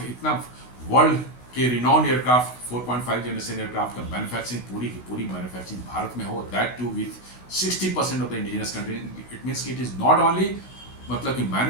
इतना वर्ल्ड के रिनाउंड एयरक्राफ्ट 4.5 जनरेशन एयरक्राफ्ट का मैन्युफैक्चरिंग पूरी की पूरी मैन्युफैक्चरिंग भारत में हो, that too with 60% of the indigenous country. It means कि इट इज नॉट ओनली मतलब कि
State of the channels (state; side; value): late; right; 16 ms